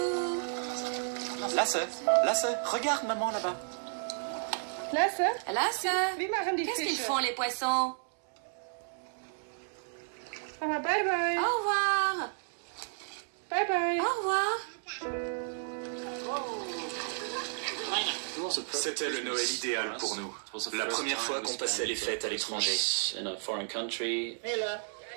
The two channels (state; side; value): silent; left; digital silence